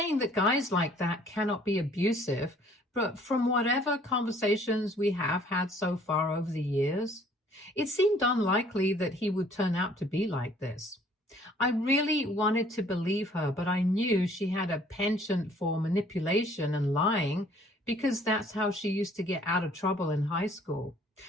that guys like that cannot be abusive, but from whatever conversations we have had so far over the years, it seemed unlikely that he would turn out to be like this. I really wanted to believe her, but I knew she had a penchant for manipulation and lying because that's how she used to get out of trouble in high school.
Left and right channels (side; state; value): both; normal; correlation 0.58